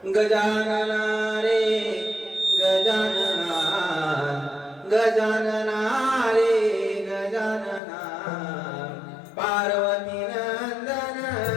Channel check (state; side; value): drops out; right; at 7.8 s